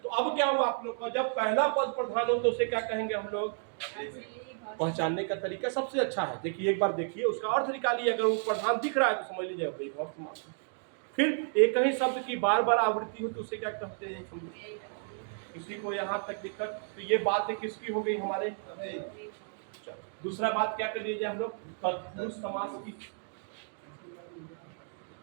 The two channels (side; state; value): left; silent; 56 dB below the other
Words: अब क्या हुआ आप लोग का? जब पहला पद प्रधान हो तो उसे क्या कहेंगे हम लोग? पहचानने का तरीका सबसे अच्छा है, देखिए एक बार देखिए उसका अर्थ निकालिए, अगर वो प्रधान दिख रहा है तो समझ लीजिए अव्ययी भाव समास। फिर एक ही शब्द की बार बार आवृत्ति हो तो उसे क्या कहते हैं? किसी को यहाँ तक दिक्कत? तो ये बात किसकी हो गई हमारे? दूसरा बात क्या कर लीजिए हम लोग? तत्पुरुष समास की।